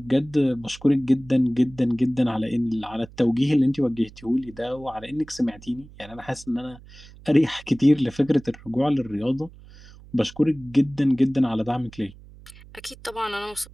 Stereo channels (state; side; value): noise; right; hum, 21 dB below the sound